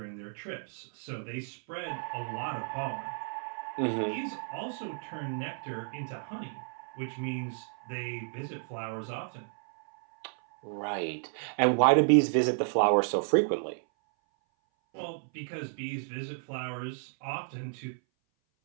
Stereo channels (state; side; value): silent; left; 56 dB below the other